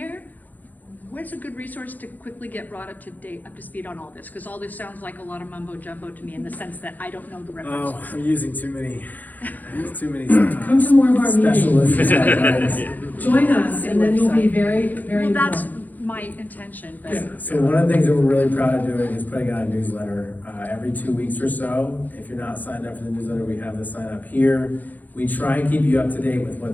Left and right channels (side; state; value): right; late; 0.083 ms